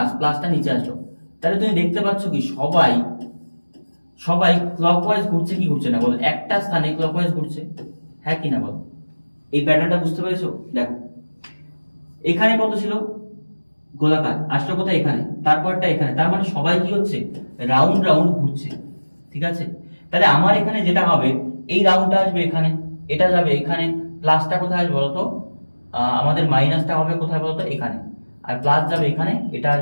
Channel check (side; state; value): both; inverted; correlation -1.00